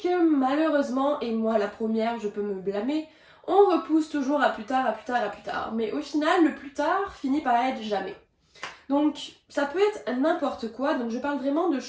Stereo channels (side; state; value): both; identical; correlation 1.00